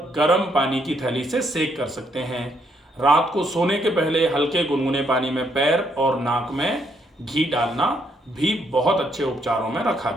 गर्म पानी की थैली से सेक कर सकते हैं। रात को सोने के पहले हल्के गुनगुने पानी में पैर और नाक में घी डालना भी बहुत अच्छे उपचारों में रखा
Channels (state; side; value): normal; both; correlation 0.73